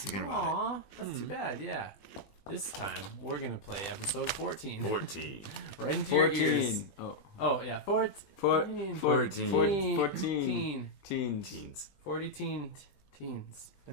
about Aw, that's too bad. Yeah. This time we're gonna play episode 14. it. 14. Right into your ears. 14. Oh yeah, 14. 14. Teens. 40 teens.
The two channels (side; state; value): right; late; 20 ms